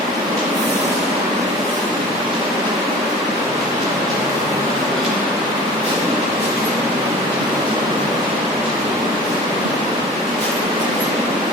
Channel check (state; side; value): normal; both; correlation 0.41